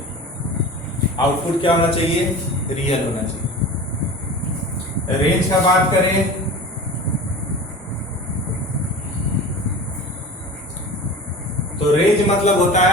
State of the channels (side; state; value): both; normal; correlation 0.35